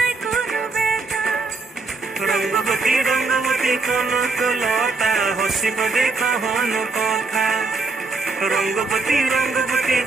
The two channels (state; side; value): quieter; left; 3.9 dB